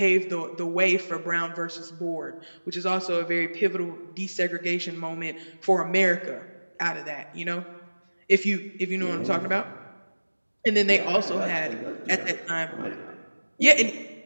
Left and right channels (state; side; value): inverted; both; correlation -1.00